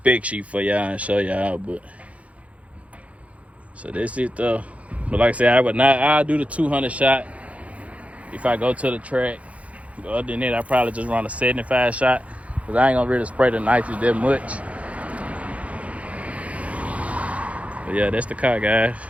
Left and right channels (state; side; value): late; left; 0.065 ms